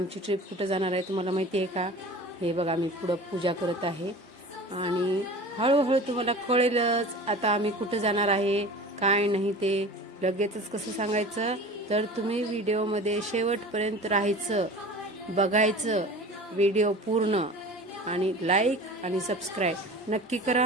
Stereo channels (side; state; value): both; normal; correlation 0.38